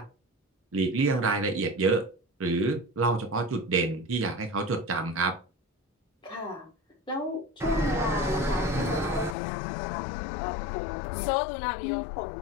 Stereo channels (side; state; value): right; drops out; at 9.3 s